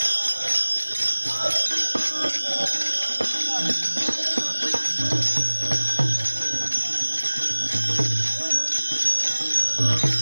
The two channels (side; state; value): both; inverted; correlation -1.00